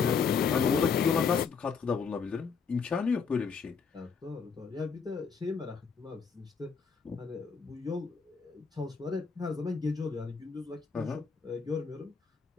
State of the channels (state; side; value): quieter; right; 5.7 dB